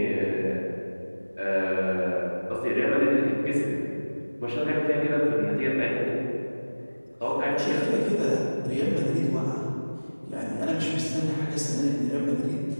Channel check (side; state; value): both; inverted; correlation -1.00